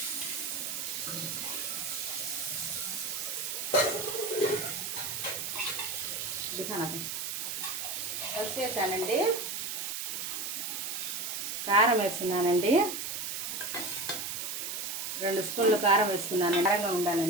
వేసానండి. కారం వేస్తున్నానండి. 2 స్పూన్లు కారం వేసుకున్నాను, కారంగా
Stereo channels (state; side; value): noise; right; hiss, 3 dB below the sound